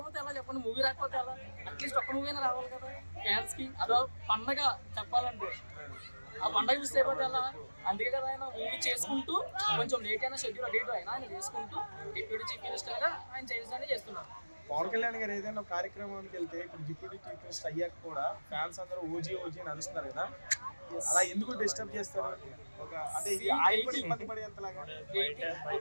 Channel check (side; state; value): both; inverted; correlation -1.00